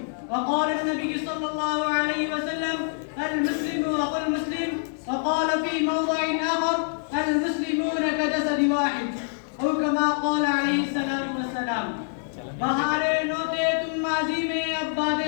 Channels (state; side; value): silent; right; 61 dB below the other